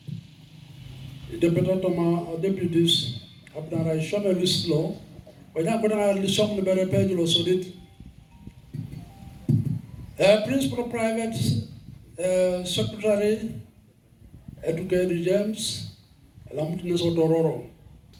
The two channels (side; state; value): both; identical; correlation 1.00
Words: deputy toma deputies abdara shome lislo wanya kodana lisong libere page lo sodit principal private secretary Educated James, Lamutines Odororo.